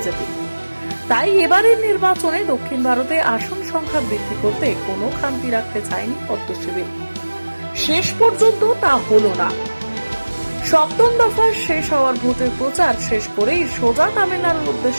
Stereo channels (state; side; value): inverted; both; correlation -1.00